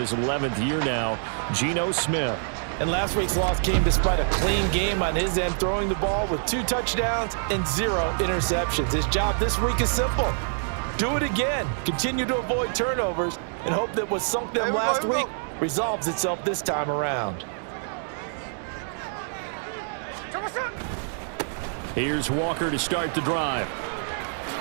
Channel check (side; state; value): left; silent; 61 dB below the other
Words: 11th year now, Geno Smith. And last week's loss came despite a clean game on his end, throwing the ball with 2 touchdowns and 0 interceptions. His job this week is simple. Do it again. Continue to avoid turnovers and hope that what sunk them last week resolves itself this time around. Here's Walker to start the drive.